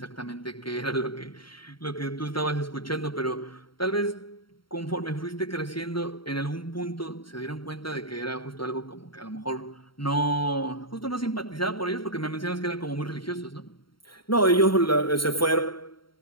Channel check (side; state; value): right; late; 0.73 ms